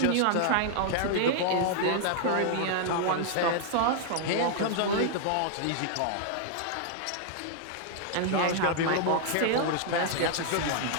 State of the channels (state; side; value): different; both; correlation 0.00